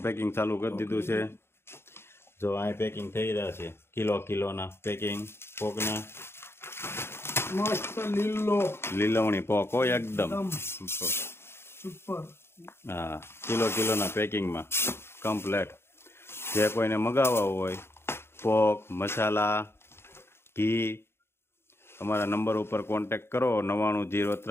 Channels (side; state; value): right; late; 0.12 ms